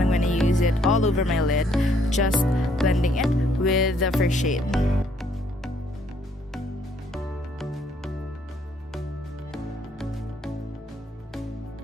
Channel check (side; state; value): both; normal; correlation 0.67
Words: I'm gonna use it all over my lid, just blending it with the first shade.